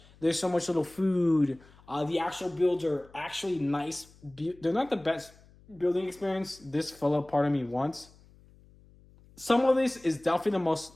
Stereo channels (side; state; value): left; noise; hum, 26 dB below the sound